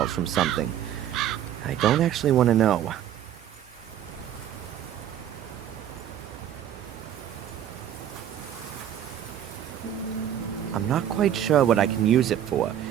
from something. I don't actually want to know. I'm not quite sure what I can use it for,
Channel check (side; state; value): left; quieter; 10.4 dB